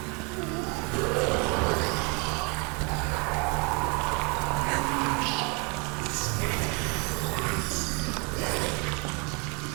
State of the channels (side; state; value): left; quieter; 32.5 dB